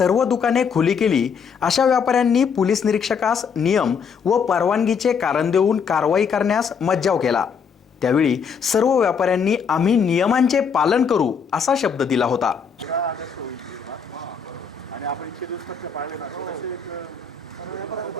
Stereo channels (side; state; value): right; quieter; 6.3 dB